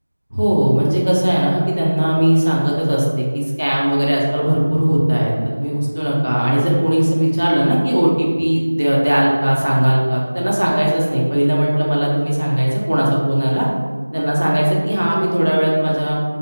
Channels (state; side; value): inverted; both; correlation -1.00